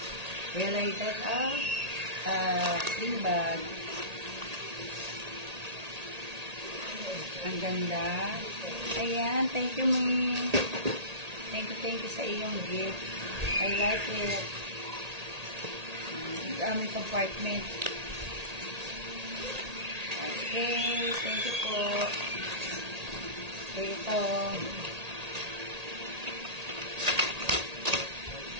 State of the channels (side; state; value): left; late; 1.8 ms